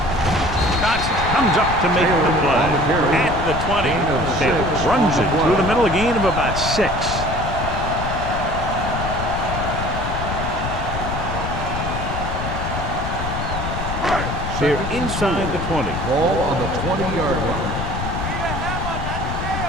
Johnson comes up to make the play. At the 20. Taylor runs it through the middle, a gain of about 6. They're inside the 20. Ball on the 20-yard line.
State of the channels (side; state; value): left; noise; rumble, 4 dB below the sound